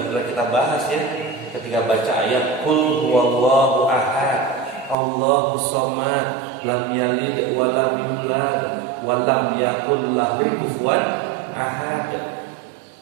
kita bahas ya, ketika baca ayat Qul huwallahu ahad, Allahus samad, lam yalid wa lam yulad wa lam yakul lahu kufuwan ahad.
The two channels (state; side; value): drops out; left; at 5.0 s